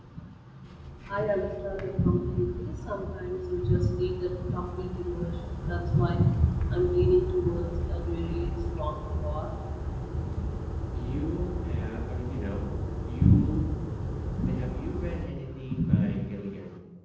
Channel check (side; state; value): both; identical; correlation 1.00